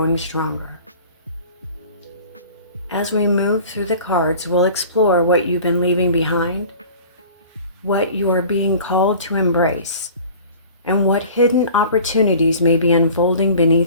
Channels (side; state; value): both; inverted; correlation -0.44